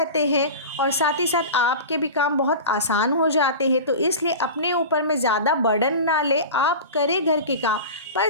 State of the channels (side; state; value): both; inverted; correlation -0.31